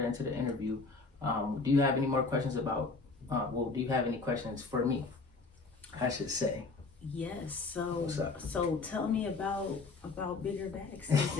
into the interview, do you have any more questions about, do you have any questions for me, I should say? Yes. So tell me about BiggerBag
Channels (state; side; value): quieter; right; 4.0 dB